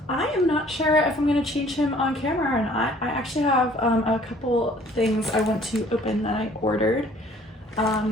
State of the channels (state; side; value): normal; both; correlation 0.56